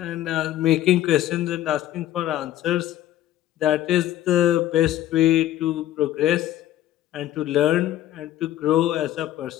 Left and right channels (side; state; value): right; quieter; 13.0 dB